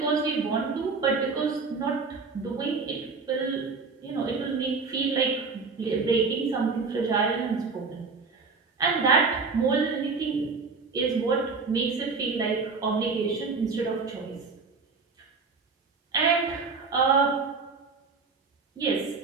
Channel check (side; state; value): left; quieter; 4.5 dB